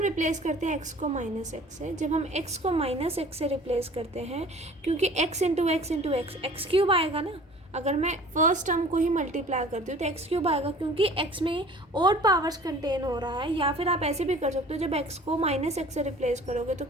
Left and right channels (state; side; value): normal; both; correlation 0.47